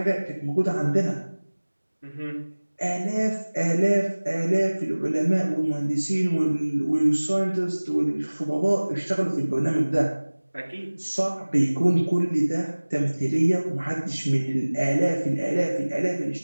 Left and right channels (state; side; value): inverted; both; correlation -1.00